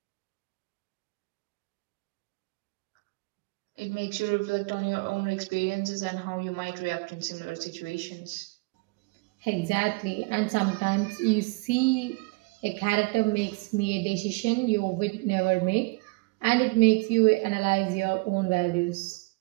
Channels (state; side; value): quieter; left; 26.5 dB